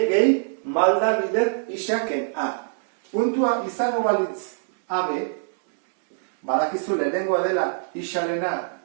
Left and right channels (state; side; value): silent; left; digital silence